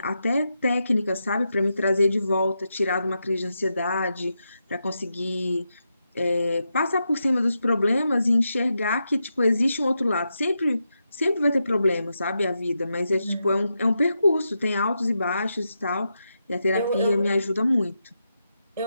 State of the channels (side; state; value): both; inverted; correlation -0.86